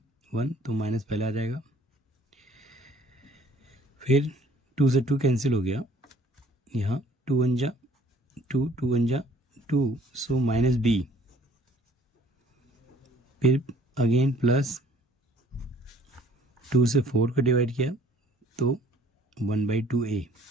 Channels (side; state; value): both; normal; correlation 0.56